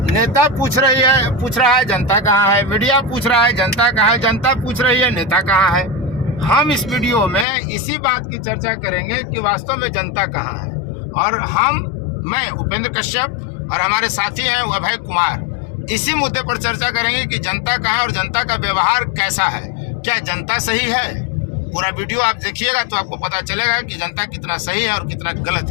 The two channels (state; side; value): drops out; right; at 7.5 s